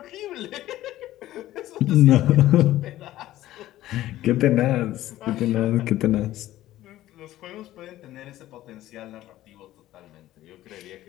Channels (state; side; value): quieter; right; 14.7 dB